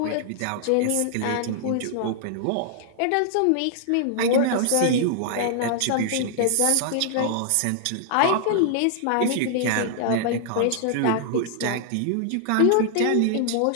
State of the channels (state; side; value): different; both; correlation -0.01